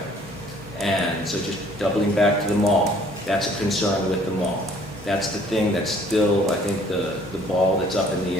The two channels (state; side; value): normal; both; correlation 0.58